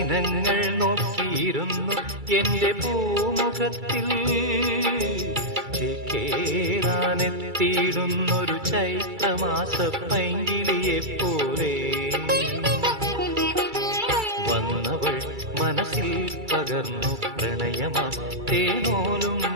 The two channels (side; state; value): left; late; 2.3 ms